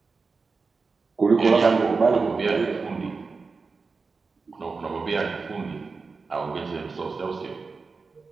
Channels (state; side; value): quieter; left; 4.4 dB